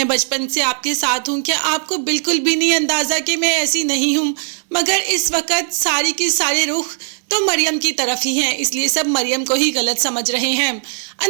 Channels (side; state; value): left; silent; digital silence